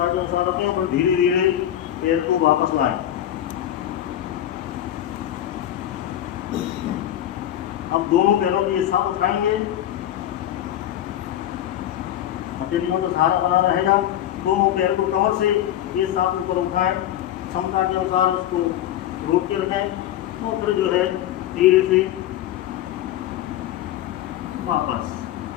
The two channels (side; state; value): right; quieter; 12.0 dB